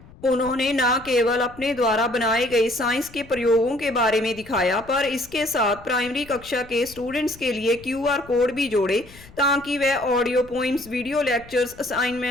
उन्होंने न केवल अपने द्वारा बनाए गए science के प्रयोगों के बारे में दिखाया, पर इसके साथ प्राइमरी कक्षा के स्टूडेंट्स के लिए QR कोड भी जोड़े ताकि वह audio poems, video lectures,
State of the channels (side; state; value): left; noise; rumble, 21 dB below the sound